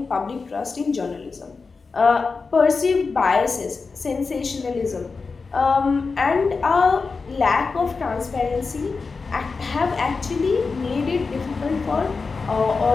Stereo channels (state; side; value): quieter; right; 4.5 dB